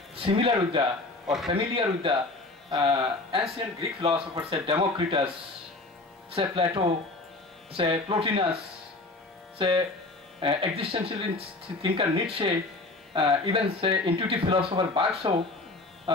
similar with the or familiar with the ancient Greek philosophers, say Democritus, say Plato, say Plotinus, say existentialist thinker Nietzsche, even say intuitive philosopher Bagso.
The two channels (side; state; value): right; quieter; 3.1 dB